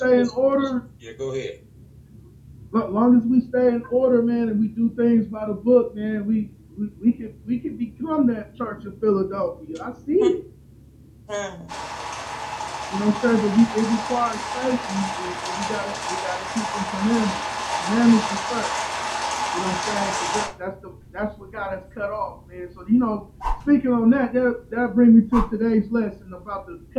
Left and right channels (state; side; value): identical; both; correlation 1.00